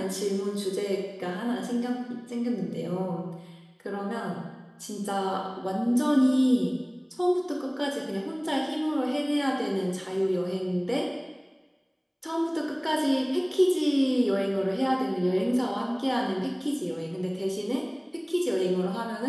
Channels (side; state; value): both; identical; correlation 1.00